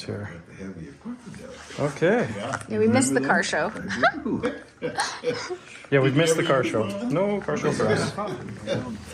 here. Okay. Yeah, we missed the car show. Yeah, we've missed the car show. No car show for us.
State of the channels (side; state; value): both; identical; correlation 1.00